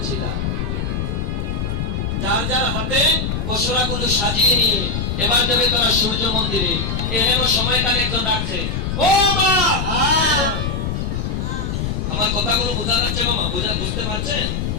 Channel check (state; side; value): noise; left; rumble, 2 dB below the sound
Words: যার যার হাতে পশুরাগুলো সাজিয়ে নিয়ে এবার যাবে তারা সূর্য মন্দিরে। এহেন সময়কালে একজন ডাকছে, ও মা! আমার কথাগুলো বোঝা যাচ্ছে মামা? বুঝতে পারছেন?